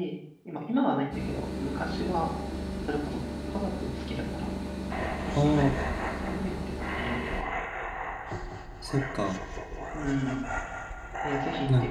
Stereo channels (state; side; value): identical; both; correlation 1.00